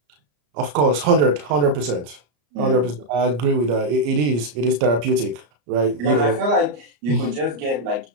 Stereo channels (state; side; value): late; left; 34 ms